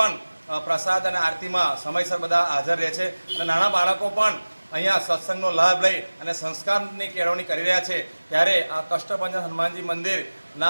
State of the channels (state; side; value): inverted; both; correlation -1.00